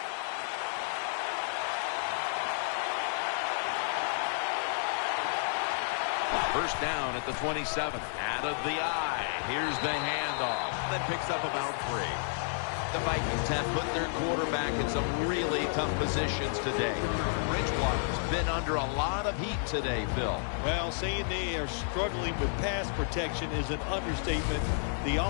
First down at the 27. Out of the eye. Here's the handoff. That picks up about 3. The Vikings have put their quarterback in some really tough positions today. Bridgewater's been under a lot of heat today, Phil. Well, saying they are struggling with pass protection is an understatement. The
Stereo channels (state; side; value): silent; right; digital silence